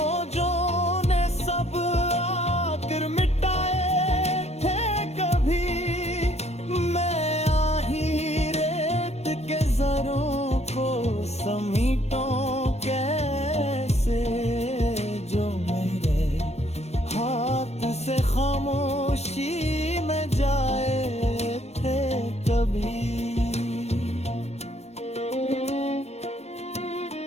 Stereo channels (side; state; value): right; late; 0.31 ms